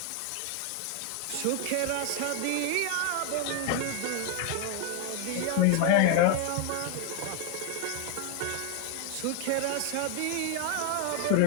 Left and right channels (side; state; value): both; different; correlation 0.01